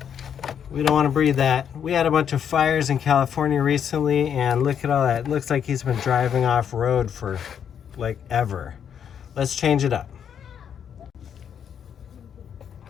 We don't want to breathe that. We had a bunch of fires in California recently, and look at all that. It looks like he's been driving off road for like ever. Let's change it up.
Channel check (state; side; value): quieter; right; 8.3 dB